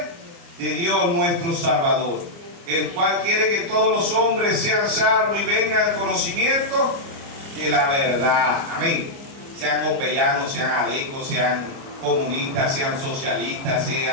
de Dios nuestro Salvador, el cual quiere que todos los hombres sean salvos y vengan al conocimiento de la verdad. Amén. Sean copellanos, sean adecos, sean comunistas, sean socialistas,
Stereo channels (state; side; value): late; left; 30 ms